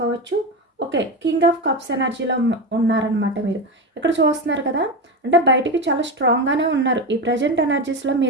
ఓకే, కింగ్ ఆఫ్ కప్స్ ఎనర్జీలో ఉన్నారనమాట మీరు. ఇక్కడ చూస్తున్నారు కదా, అంటే బయటికి చాలా స్ట్రాంగ్గానే ఉన్నారు. ఈ ప్రజెంట్ ఎనర్జీస్లో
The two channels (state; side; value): normal; both; correlation 0.18